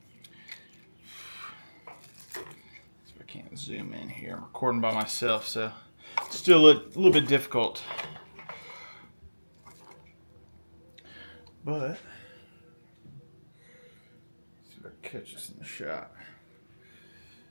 I can't zoom in here. I'm recording by myself, so it's still a little bit difficult. But let's see if I can catch this in the shot.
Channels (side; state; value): both; inverted; correlation -1.00